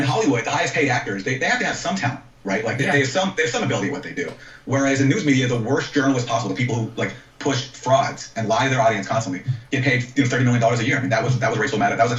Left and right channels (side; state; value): both; identical; correlation 1.00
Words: Hollywood, the highest paid actors, they have to have some talent, right? Like they have some ability at what they do. Whereas in news media, the worst journalists possible, the people who like push frauds and lie to their audience constantly, get paid $30 million a year. I mean, that was Rachel Maddow. That was a